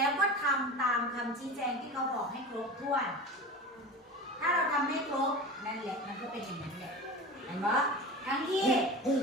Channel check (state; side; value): normal; both; correlation 0.31